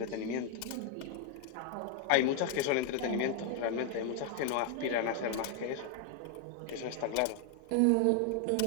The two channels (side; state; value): both; different; correlation 0.00